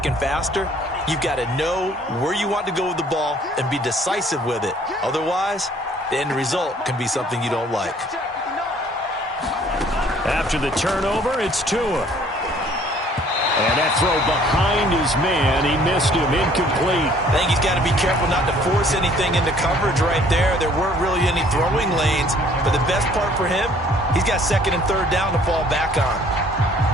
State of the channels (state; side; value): normal; both; correlation 0.58